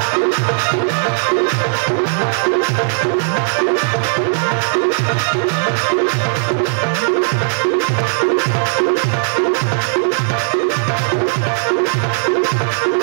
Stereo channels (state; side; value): silent; left; 58 dB below the other